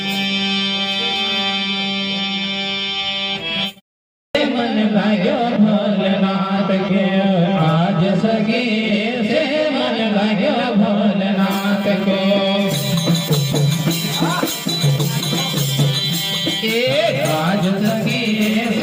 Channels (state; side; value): identical; both; correlation 1.00